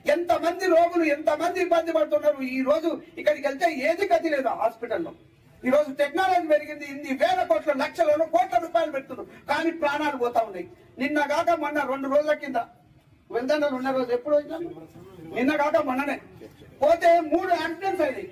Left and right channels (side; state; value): both; identical; correlation 1.00